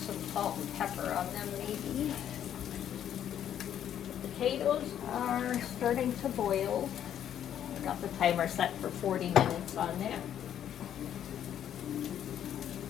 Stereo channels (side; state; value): right; quieter; 10.1 dB